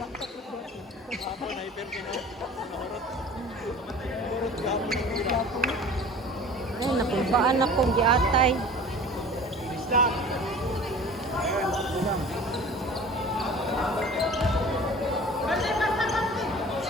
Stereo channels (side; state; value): both; normal; correlation 0.43